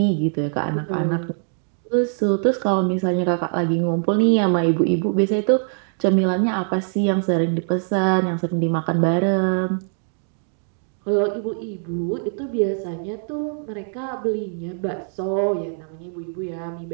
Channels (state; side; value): silent; left; 64 dB below the other